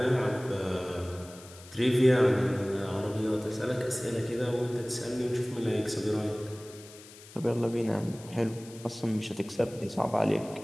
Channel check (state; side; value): noise; left; hiss, 19 dB below the sound